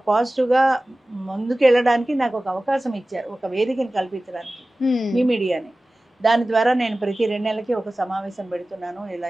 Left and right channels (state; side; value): normal; both; correlation 0.97